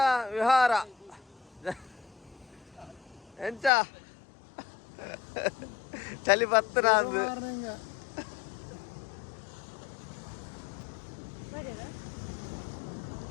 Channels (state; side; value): drops out; right; at 3.7 s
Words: ವಿಹಾರ ಎಂಚ ಚಳಿ ಬತ್ತನ ಅಂದು